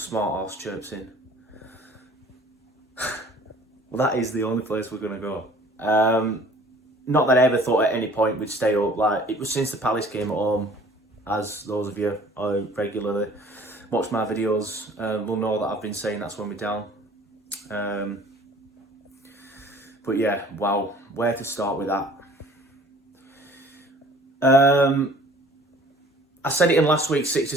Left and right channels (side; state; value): both; normal; correlation 0.51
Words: arse chirps in. Well, that is the only place we're going to go. Not that I ever thought at any point we'd stay up. Like, it was since the Palace came at home, as those of you who regularly watch my videos will know that I've been saying that's when we're down. But yeah, wow, where to start with that? I said it in last week's